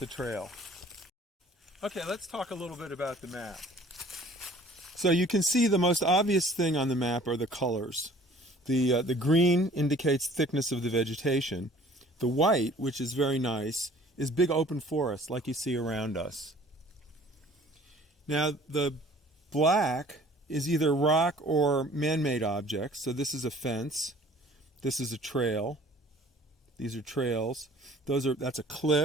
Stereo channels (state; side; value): normal; both; correlation 0.52